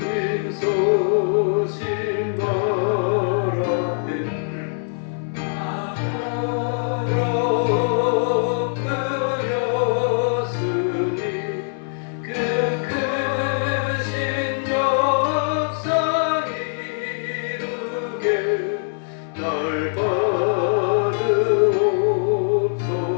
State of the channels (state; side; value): silent; right; 64 dB below the other